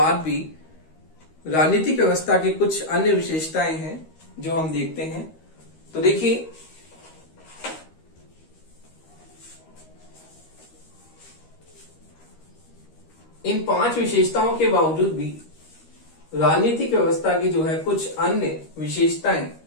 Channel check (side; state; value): right; late; 13 ms